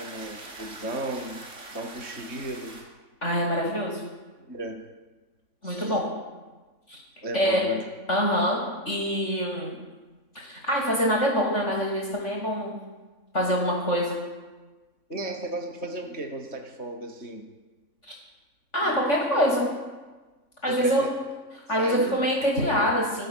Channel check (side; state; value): right; late; 3.5 ms